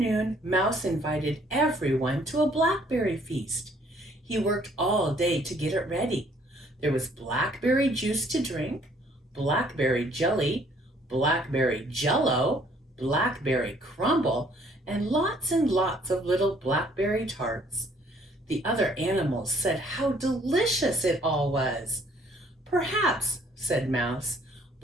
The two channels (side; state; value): both; normal; correlation 0.61